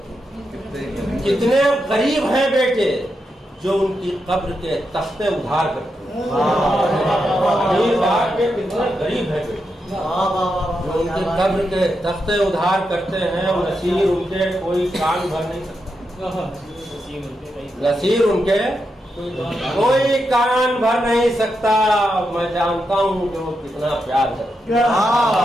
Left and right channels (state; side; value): normal; both; correlation 0.85